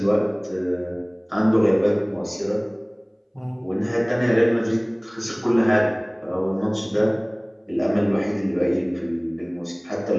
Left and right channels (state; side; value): identical; both; correlation 1.00